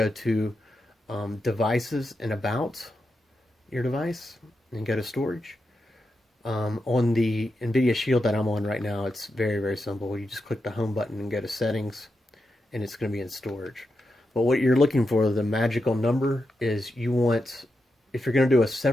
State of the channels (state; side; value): normal; both; correlation 0.87